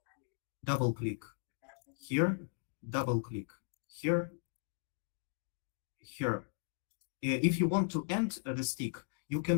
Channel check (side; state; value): right; silent; digital silence